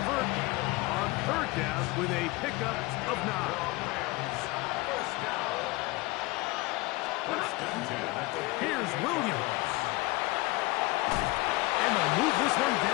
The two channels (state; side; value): quieter; right; 22.2 dB